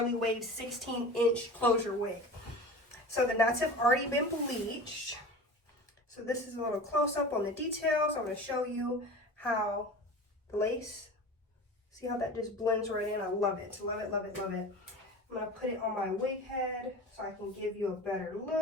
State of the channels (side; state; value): both; normal; correlation 0.35